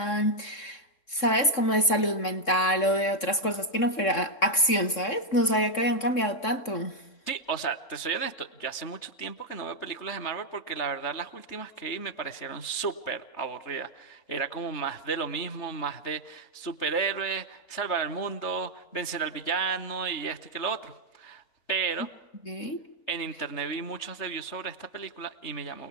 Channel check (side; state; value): right; late; 3.6 ms